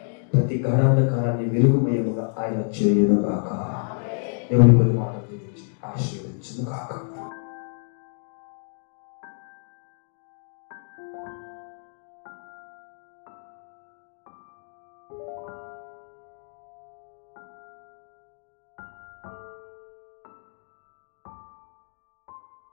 ప్రతి గాఢాంధకారాన్ని వెలుగుమయముగా ఆయన చేయును గాక. దేవుని కొన్ని మాటలు ఆశీర్వదించును గాక.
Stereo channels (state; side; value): silent; right; 60 dB below the other